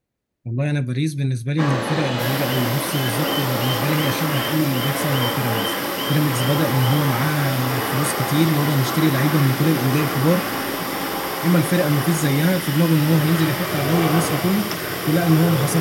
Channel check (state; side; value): identical; both; correlation 1.00